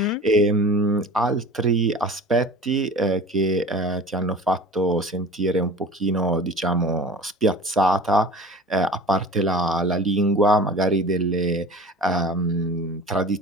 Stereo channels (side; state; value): both; normal; correlation 0.40